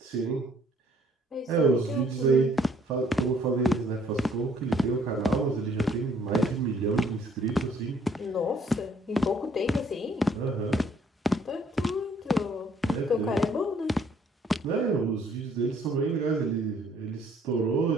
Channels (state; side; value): normal; both; correlation 0.63